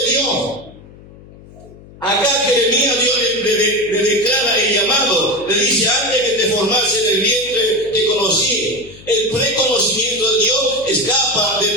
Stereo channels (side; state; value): left; noise; hum, 21 dB below the sound